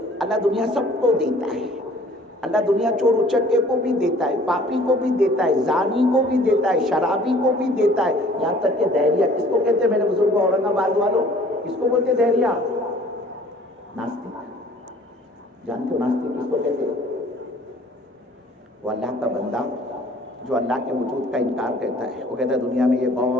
اللہ دنیا سب کو دیتا ہے۔ اللہ دنیا چور اچکے کو بھی دیتا ہے، پاپی کو بھی دیتا ہے، زانی کو بھی دیتا ہے، شرابی کو بھی دیتا ہے، یہاں تک کہ دہریہ، کس کو کہتے ہیں میرے بزرگوں اورنگ آباد والوں؟ کس کو بولتے دہریہ؟ ناستک۔ جانتے ہو ناستک کس کو کہتے ہیں؟ وہ اللہ کا بندہ جو اللہ کے وجود کا انکار کرتا ہے۔ وہ کہتا ہے دنیا میں یہ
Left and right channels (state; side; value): normal; both; correlation 0.53